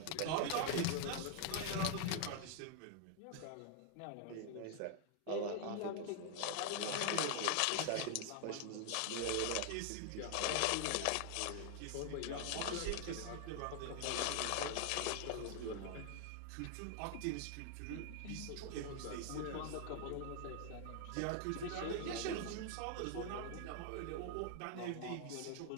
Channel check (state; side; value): different; both; correlation 0.00